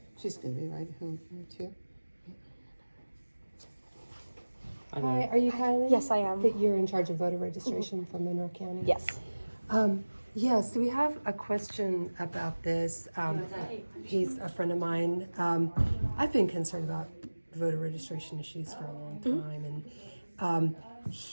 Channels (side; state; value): both; inverted; correlation -1.00